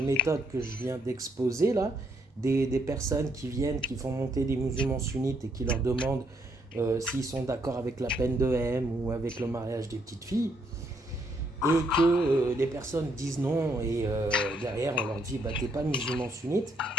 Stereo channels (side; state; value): both; normal; correlation 0.72